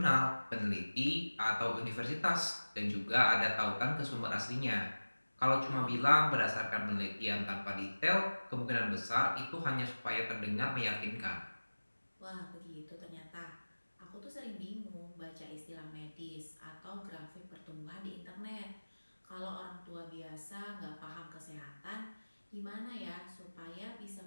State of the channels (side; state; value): both; inverted; correlation -1.00